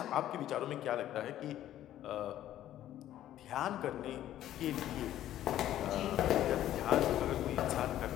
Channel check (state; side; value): quieter; right; 12.5 dB